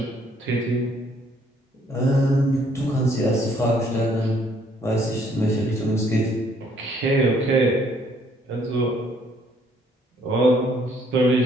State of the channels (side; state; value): both; normal; correlation 0.64